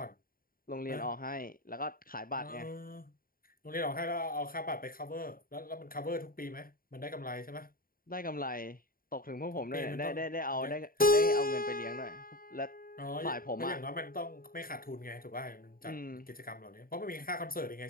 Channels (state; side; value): late; right; 0.42 ms